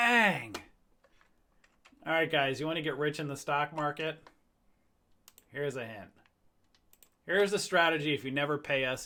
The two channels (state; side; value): identical; both; correlation 1.00